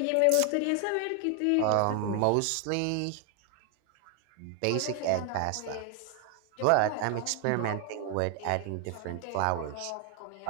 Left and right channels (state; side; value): different; both; correlation 0.00